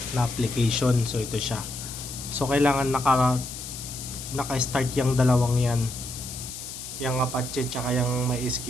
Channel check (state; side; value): noise; left; hiss, 10 dB below the sound